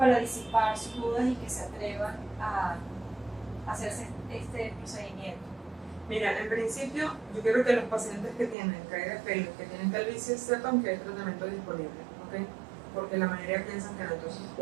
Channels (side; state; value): left; drops out; at 8.6 s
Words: disipar sus dudas y que se atrevan a hacerse este procedimiento? Mira, en principio, yo quiero que los pacientes que tienen caída de pelo, que tienen calvicie, sepan que hay tratamiento disponible, ¿ok? Porque la mayoría piensan que no. Entonces,